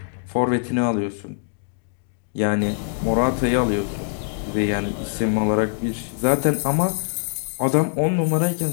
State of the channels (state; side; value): silent; right; digital silence